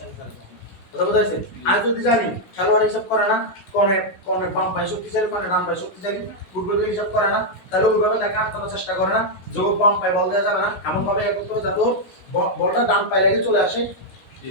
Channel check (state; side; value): late; right; 16 ms